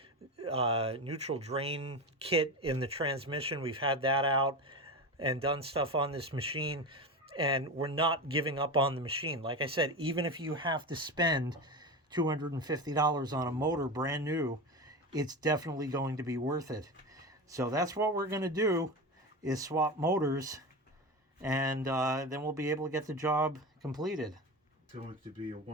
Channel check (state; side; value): normal; both; correlation 0.23